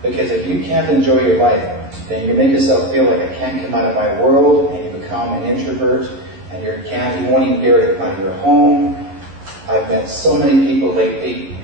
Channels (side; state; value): left; late; 11 ms